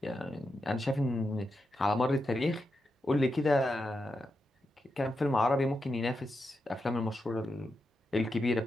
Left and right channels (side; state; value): both; normal; correlation 0.87